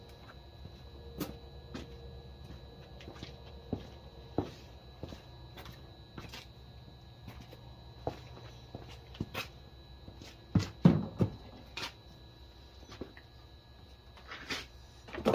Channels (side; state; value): both; identical; correlation 1.00